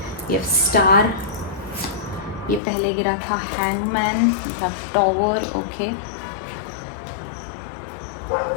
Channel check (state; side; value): drops out; right; at 2.6 s